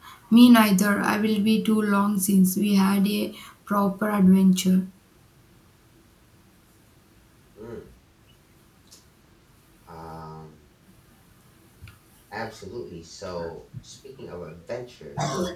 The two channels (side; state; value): both; identical; correlation 1.00